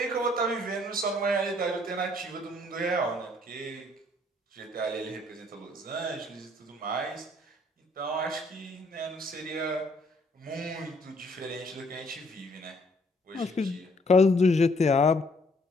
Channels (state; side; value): normal; both; correlation 0.65